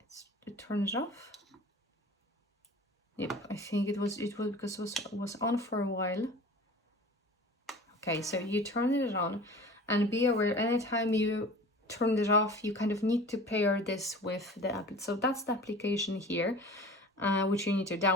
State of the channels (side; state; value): both; normal; correlation 0.40